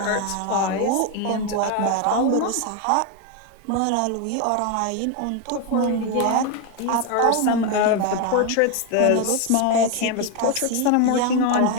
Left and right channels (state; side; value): different; both; correlation 0.01